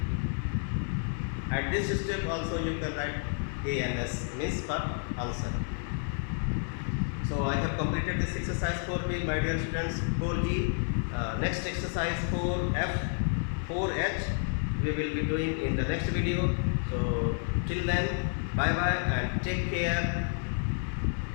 At this step also you can write A and S, means for answer. So I have completed this exercise 4b, my dear students. 4g. Next exercise 4f, 4h we will be doing in the next video. So till then, bye bye and take care.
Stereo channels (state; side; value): silent; right; 58 dB below the other